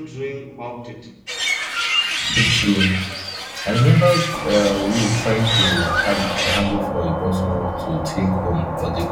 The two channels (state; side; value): identical; both; correlation 1.00